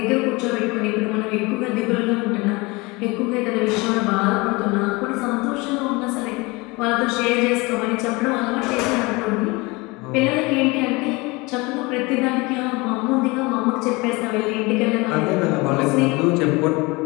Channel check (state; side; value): quieter; right; 24.8 dB